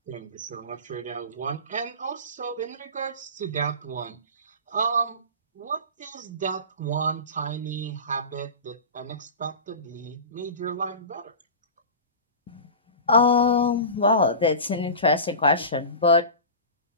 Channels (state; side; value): inverted; both; correlation -0.31